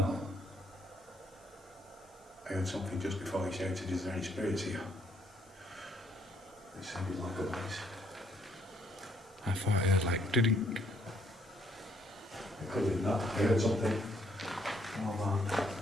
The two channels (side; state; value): both; normal; correlation 0.69